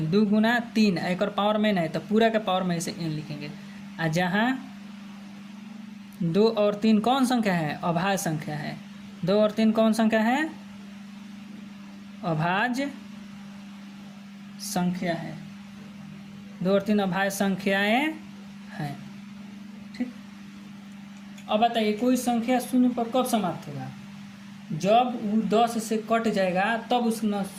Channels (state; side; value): identical; both; correlation 1.00